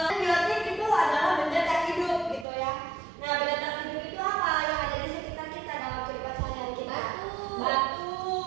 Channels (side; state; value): left; drops out; at 2.5 s